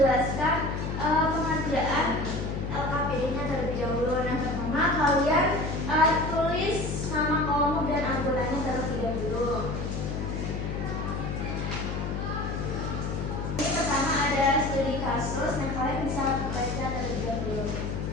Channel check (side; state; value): left; noise; hum, 3 dB below the sound